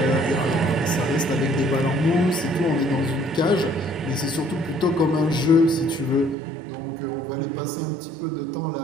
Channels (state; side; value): drops out; left; at 6.4 s